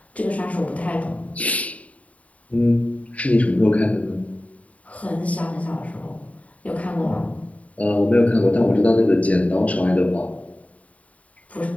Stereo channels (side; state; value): right; late; 0.068 ms